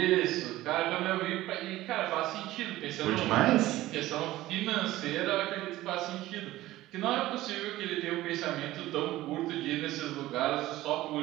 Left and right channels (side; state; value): left; quieter; 16.4 dB